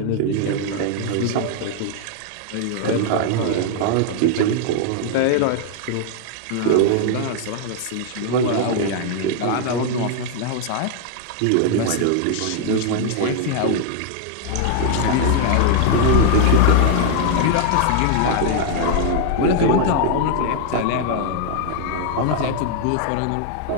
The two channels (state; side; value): different; both; correlation 0.00